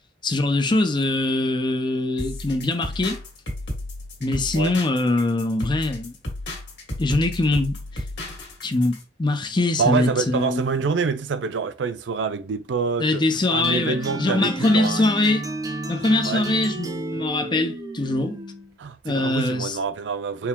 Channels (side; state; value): both; normal; correlation 0.59